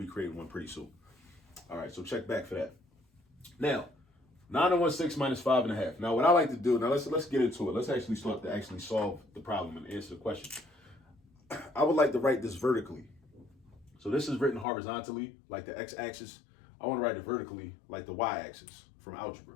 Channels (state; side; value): drops out; right; at 14.7 s